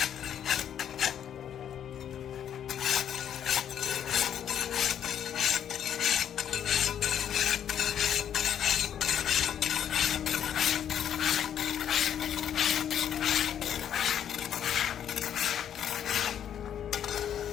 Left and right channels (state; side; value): quieter; right; 9.5 dB